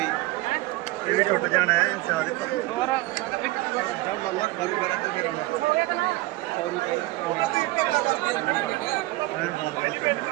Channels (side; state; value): left; quieter; 19.6 dB